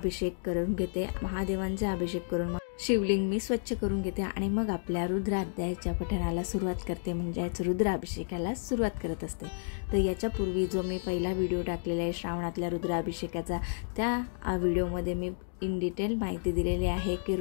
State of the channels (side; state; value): right; silent; digital silence